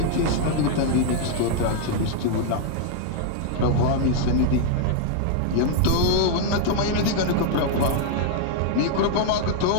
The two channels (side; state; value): both; different; correlation 0.00